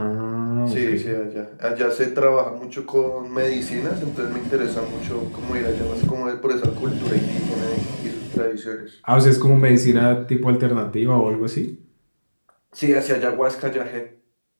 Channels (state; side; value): inverted; both; correlation -1.00